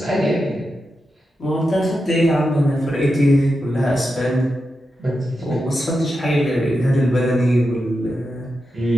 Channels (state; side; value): normal; both; correlation 0.89